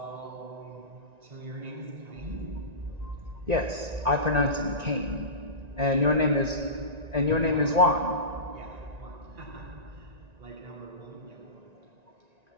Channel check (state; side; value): late; left; 1.9 ms